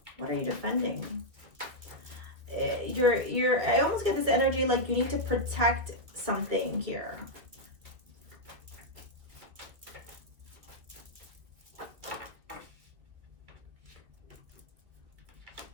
are you defending? I almost get this energy like you need to protect something here.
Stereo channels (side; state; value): left; late; 2.1 ms